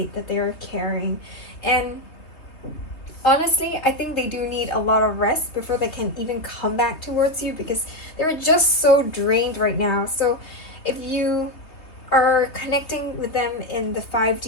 that they are carrying. And honestly, I think they do need a lot of rest before they can even come back towards you, because they're just so drained right now. So if you are connecting with them in the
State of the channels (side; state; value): right; late; 3.3 ms